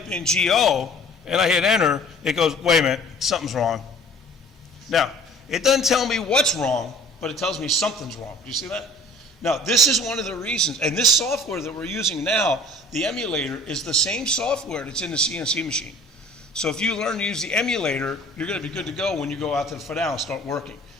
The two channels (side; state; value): both; normal; correlation 0.49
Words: in GO and I hit enter, it goes, wait a minute, something's wrong. Now, it doesn't tell me what's wrong, but it tells me something's wrong. Do you see that? Now, this is one of the reasons, and this software that we're using now, the emulator, is the same software that's in the CNC machine. So if you learn to use the emulator, you're going to be good to go when you go out to the FIDAL and start working,